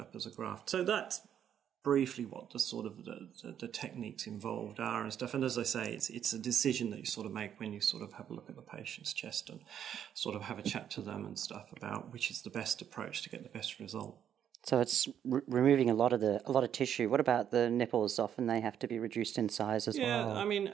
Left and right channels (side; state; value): left; quieter; 9.4 dB